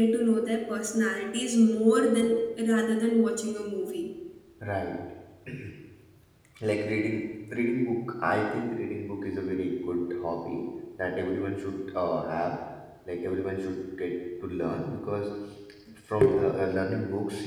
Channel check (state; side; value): identical; both; correlation 1.00